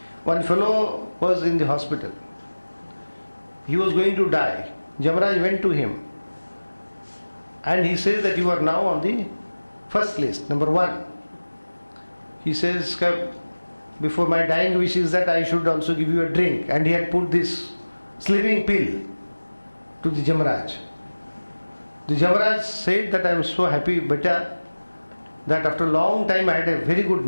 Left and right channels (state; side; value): inverted; both; correlation -1.00